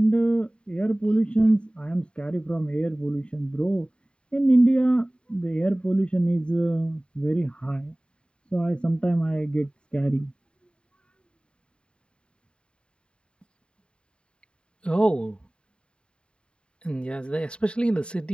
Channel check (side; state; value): right; late; 0.052 ms